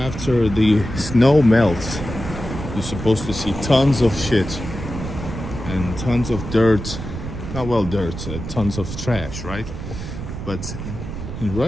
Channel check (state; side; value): noise; right; rumble, 8 dB below the sound